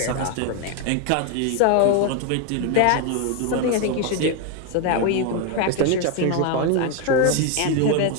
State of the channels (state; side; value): different; both; correlation 0.01